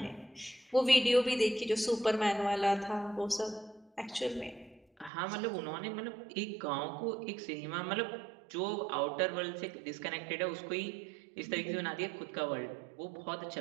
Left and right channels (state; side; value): drops out; left; at 5.1 s